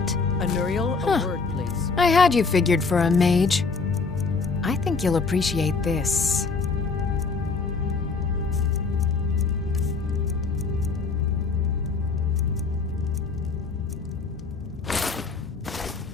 Anuriel, a word, please. I had you figured for a mage. I think you'll appreciate this.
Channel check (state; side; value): quieter; right; 4.5 dB